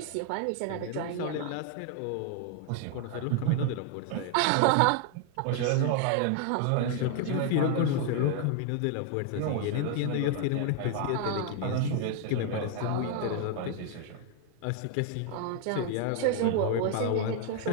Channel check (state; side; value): different; both; correlation 0.00